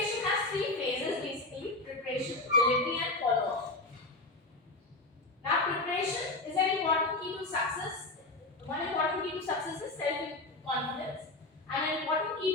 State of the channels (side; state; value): right; quieter; 3.0 dB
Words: has three phases basically: preparation, delivery, and follow-up. Now preparation is an important key to success. One important key to success is self-confidence, and an important